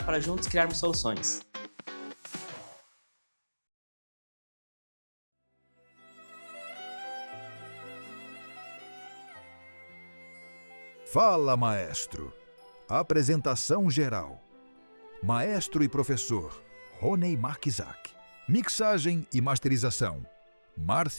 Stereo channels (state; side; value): inverted; both; correlation -1.00